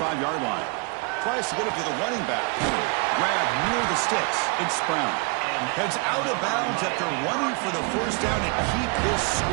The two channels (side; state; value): left; quieter; 32.1 dB